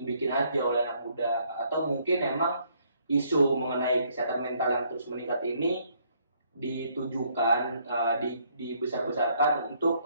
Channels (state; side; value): inverted; both; correlation -0.68